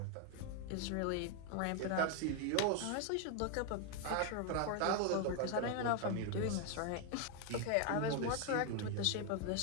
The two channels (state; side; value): different; both; correlation 0.01